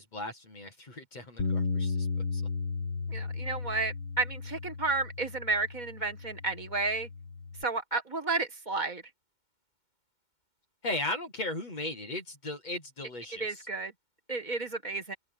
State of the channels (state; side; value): late; right; 2.2 ms